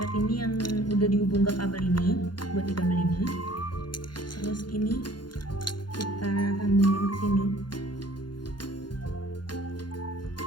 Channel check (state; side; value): late; right; 0.71 ms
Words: ini yang udah dihubung ke kabel ini, buat di kabel ini. Terus ini kita sambungin ke sini.